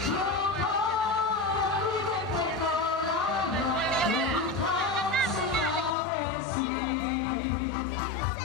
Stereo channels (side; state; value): right; drops out; at 6.0 s